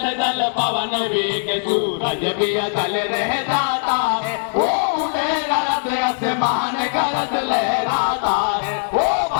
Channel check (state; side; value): silent; right; digital silence